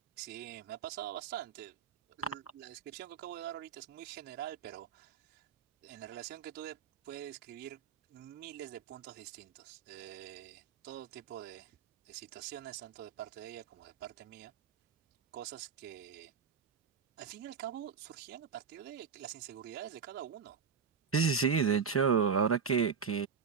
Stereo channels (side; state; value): left; quieter; 6.3 dB